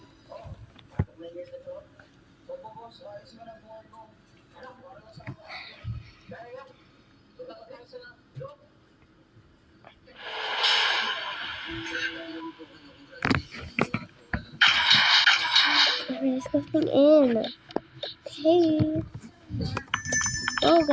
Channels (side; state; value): both; identical; correlation 1.00